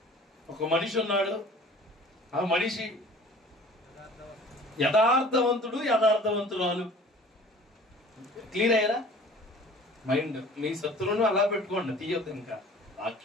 ఒక మనిషి ఉన్నాడు. ఆ మనిషి యథార్థవంతుడు, యథార్థవంతురాలు. క్లియర్ అయ్యారా? మైండ్ మీ శత్రువును అలా పెట్టుకోండి, తీయొద్దు. ఇంకా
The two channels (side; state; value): both; normal; correlation 0.47